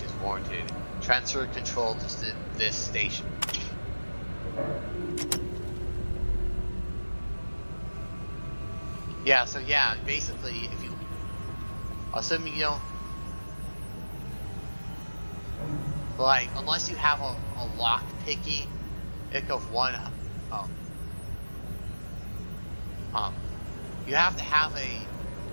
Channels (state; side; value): inverted; both; correlation -1.00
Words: is warranted. Transfer control to this station. Yeah, so yeah, basically, if you, assuming you don't, like, unless you have a lock picking ick of one, you have to have a